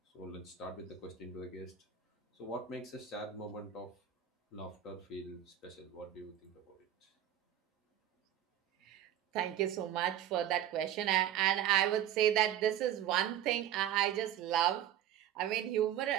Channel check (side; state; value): left; quieter; 10.7 dB